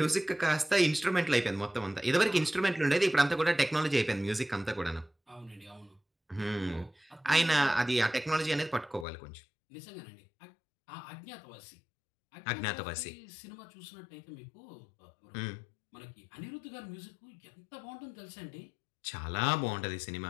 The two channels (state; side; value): drops out; right; at 9.1 s